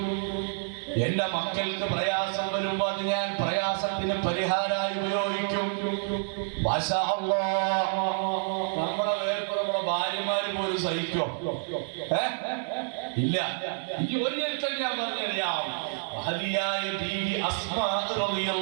എന്റെ മക്കൾക്ക് പ്രയാസം വരുമ്പോ അത് ഞാൻ പ്രയാസത്തിന് പരിഹാരമായി ഉപയോഗിക്കും. മാഷാ അല്ലാഹ്, നമ്മുടെ വേർപ്പ് നമ്മുടെ ഭാര്യമാര് പോലും സഹിക്കോ? ഇല്ല. ഇനി ഒരു ചരിത്രം ഞാൻ പറഞ്ഞറിയാം. മഹദിയായ ബീവി അസ്മാ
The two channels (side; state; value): left; silent; digital silence